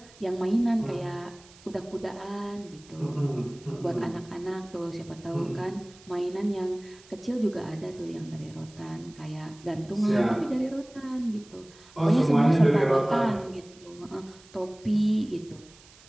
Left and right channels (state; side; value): noise; right; hiss, 24 dB below the sound